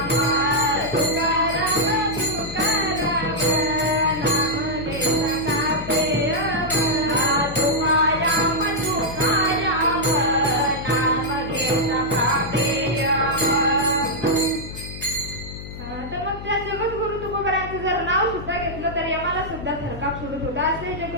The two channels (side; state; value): left; noise; hum, 11 dB below the sound